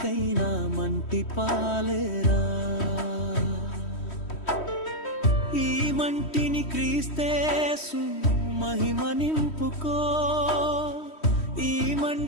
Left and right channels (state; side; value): late; right; 3.1 ms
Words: మంటి పాలేరా. ఈ మంటిని క్రీస్తేసు మహిమ నింపుకో, ఈ